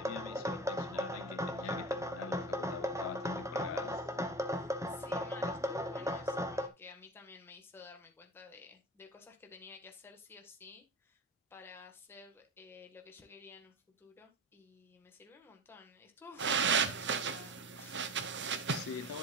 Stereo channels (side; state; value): both; normal; correlation 0.31